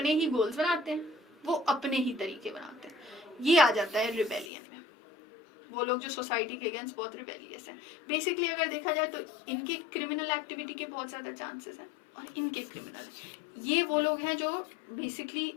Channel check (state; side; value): drops out; right; at 4.5 s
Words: ही गोल्स बनाते हैं, वो अपने ही तरीके बनाते हैं। ये आ जाता है रिबेलियन में। वो लोग जो सोसाइटी के अगेंस्ट बहुत रिबेलियस हैं। बेसिकली अगर देखा जाए तो इनके क्रिमिनल एक्टिविटी के बहुत ज़्यादा चांसेस हैं, और इनके क्रिमिनल, ये वो लोग हैं जो बेसिकली